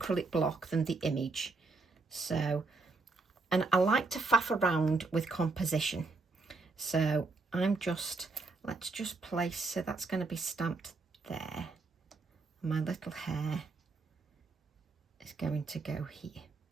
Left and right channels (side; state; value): left; quieter; 3.9 dB